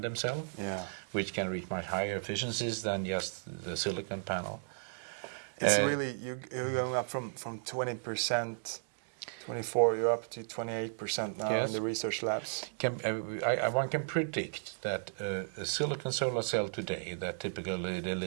cell, which can reach much higher efficiencies than just the silicon panel. It's really you're going up from 20%. 24, you're up to 28% now in the research labs. One can predict that a silicon solar cell today that typically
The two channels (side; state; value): left; silent; digital silence